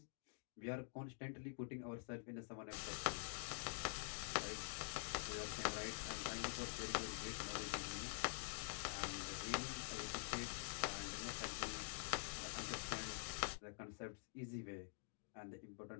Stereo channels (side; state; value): right; silent; digital silence